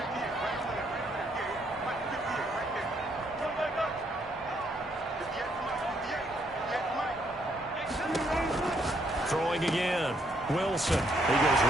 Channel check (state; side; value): normal; both; correlation 0.72